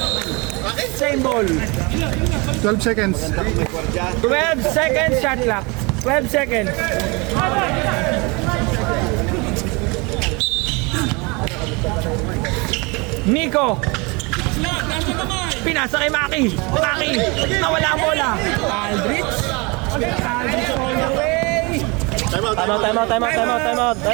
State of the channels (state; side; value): quieter; left; 27.9 dB